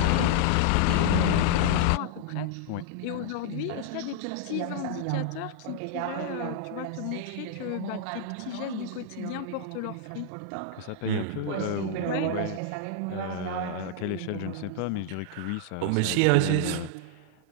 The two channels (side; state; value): both; different; correlation -0.01